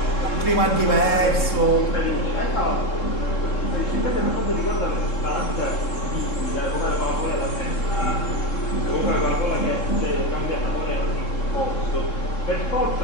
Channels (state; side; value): late; right; 3.7 ms